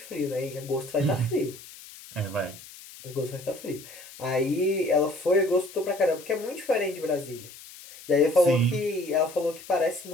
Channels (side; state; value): left; noise; hiss, 17 dB below the sound